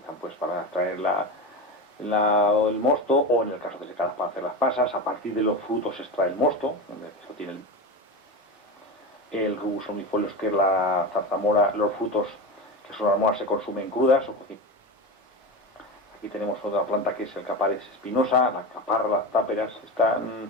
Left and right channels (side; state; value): both; normal; correlation 0.22